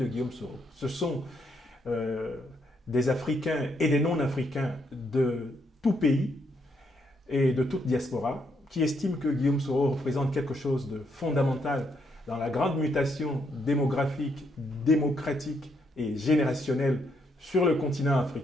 Guillaume Soro. Ce sont des Africains et des non-Africains de tout pays et de toute diaspora qui estiment que Guillaume Soro représente quelque chose de fondamental dans la grande mutation démographique, démocratique et générationnelle sur le continent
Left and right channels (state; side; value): normal; both; correlation 0.75